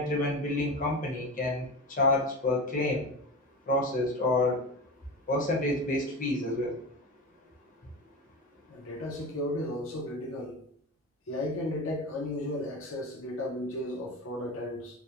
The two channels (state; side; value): normal; both; correlation 0.26